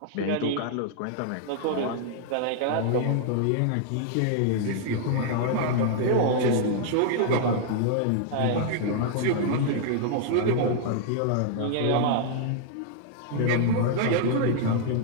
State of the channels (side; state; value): both; different; correlation -0.01